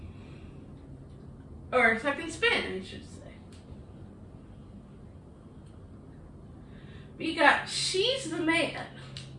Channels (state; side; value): identical; both; correlation 1.00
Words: Or second spin, I should say. We got She's the Man.